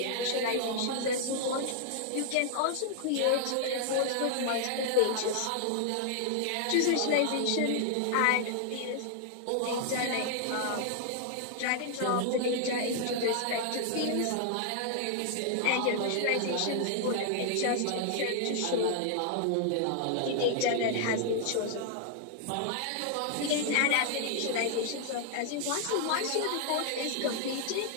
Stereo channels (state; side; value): different; both; correlation 0.00